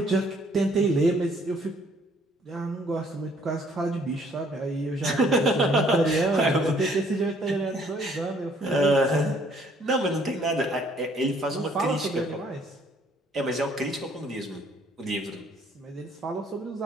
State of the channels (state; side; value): normal; both; correlation 0.62